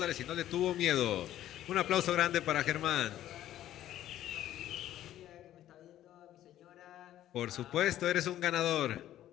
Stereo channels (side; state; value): right; quieter; 12.7 dB